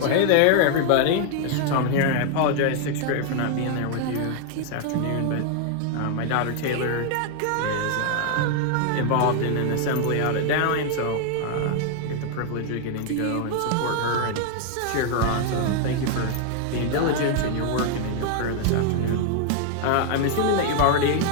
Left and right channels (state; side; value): different; both; correlation 0.00